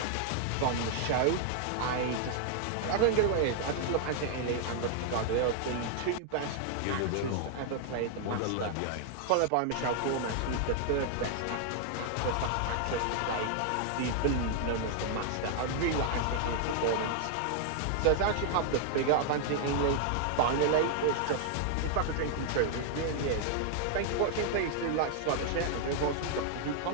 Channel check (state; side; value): different; both; correlation 0.00